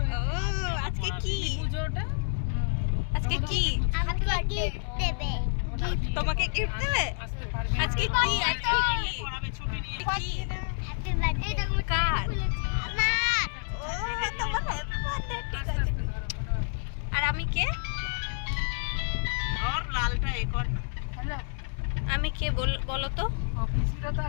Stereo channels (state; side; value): silent; right; digital silence